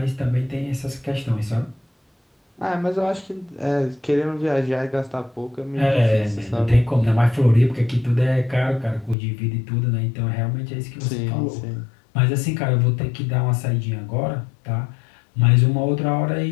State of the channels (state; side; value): drops out; right; at 9.2 s